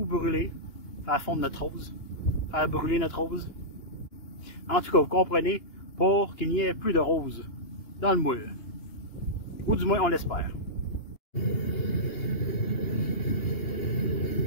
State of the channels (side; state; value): right; late; 2.9 ms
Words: brûler, faire fondre notre rose, faire brûler notre rose. En tout cas, vous comprenez, pour qu'il n'y ait plus de rose dans le moule. Ou du moins, on l'espère.